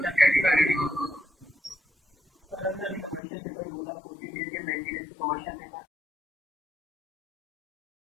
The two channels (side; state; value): right; drops out; at 3.2 s